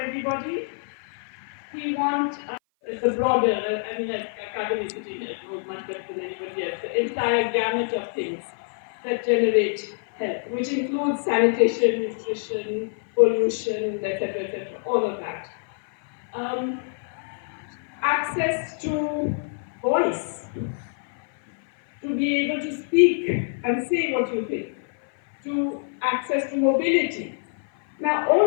We want the broader, Kaveri sitting here knows much better than anybody else, the entire gamut of things that generate health, which includes sanitation, nutrition, pollution, etc., all of that. Access to voice, to be able to speak and say what you think, to access to mobility. Now,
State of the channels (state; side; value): silent; right; 56 dB below the other